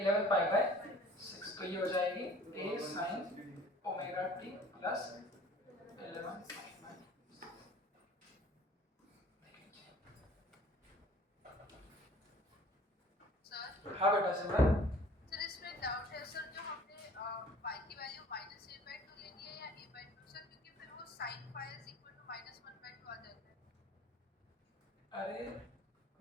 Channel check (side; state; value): both; normal; correlation 0.50